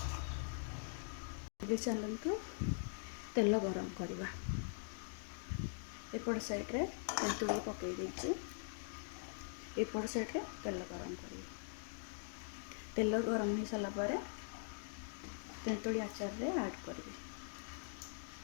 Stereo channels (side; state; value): right; silent; digital silence